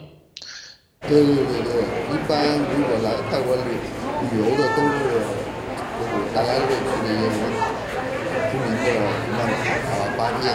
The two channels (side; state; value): both; identical; correlation 1.00